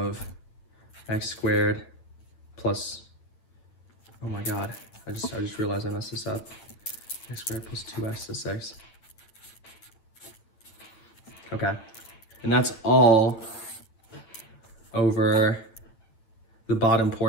x squared plus, oh my god, I just realized I messed this up. X squared plus 2x to 6. Okay, and that's all over the bottom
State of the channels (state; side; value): late; right; 9.0 ms